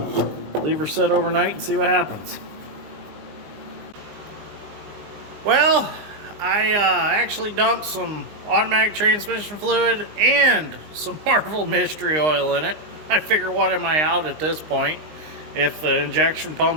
leave her sit overnight and see what happens. Well, I actually dumped some automatic transmission fluid and some Marvel mystery oil in it. I figure, what am I out at this point? If the injection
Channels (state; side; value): late; left; 19 ms